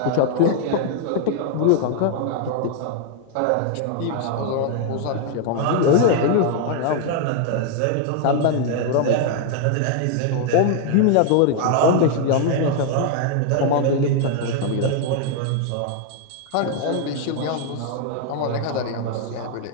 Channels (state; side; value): different; both; correlation 0.00